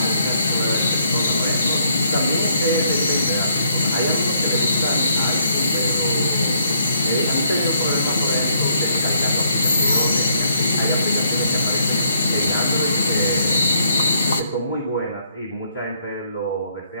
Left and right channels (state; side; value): inverted; both; correlation -0.69